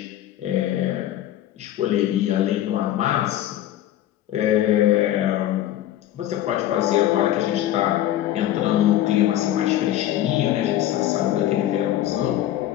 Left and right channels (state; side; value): quieter; right; 12.9 dB